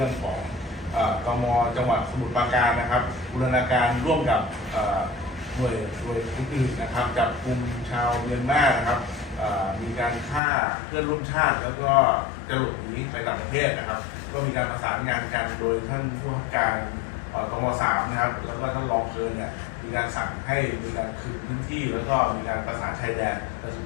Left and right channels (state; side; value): drops out; right; at 10.4 s